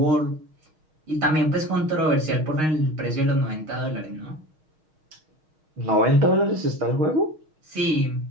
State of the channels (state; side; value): late; left; 6.4 ms